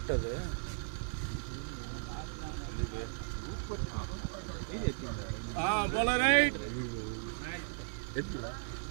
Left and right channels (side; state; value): left; silent; digital silence